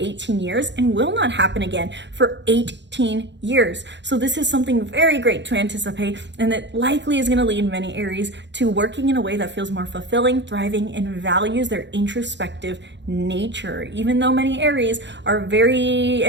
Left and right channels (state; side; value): late; left; 0.52 ms